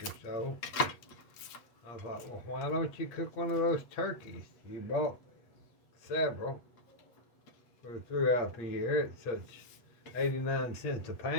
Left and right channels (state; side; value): late; right; 8.2 ms